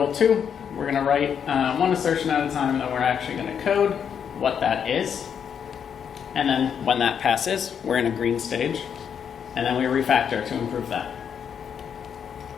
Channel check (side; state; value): right; quieter; 7.7 dB